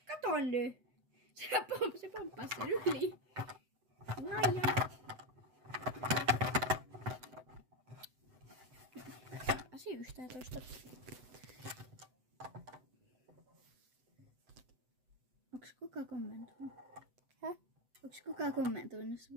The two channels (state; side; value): late; left; 7.9 ms